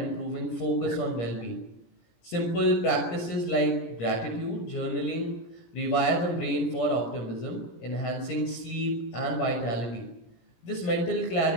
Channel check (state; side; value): late; right; 17 ms